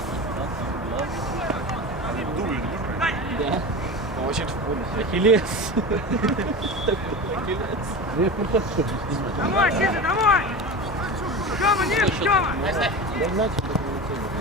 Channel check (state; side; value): normal; both; correlation 0.28